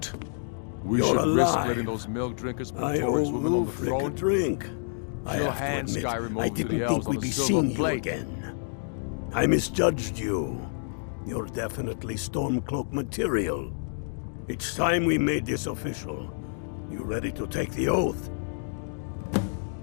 We You're should risk alive. letting those milk drinkers put I Taurus owe women on the Ulfric a throne. drink. I She'll have to hand admit, Skyrim I over to didn't the elves think on we'd a be silver seeing you plate. again. I misjudged you. You're definitely Stormcloak material. It's time we made this official. You ready to take the oath?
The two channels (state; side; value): silent; right; digital silence